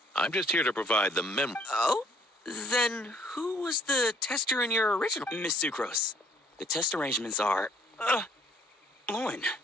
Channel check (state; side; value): normal; both; correlation 0.60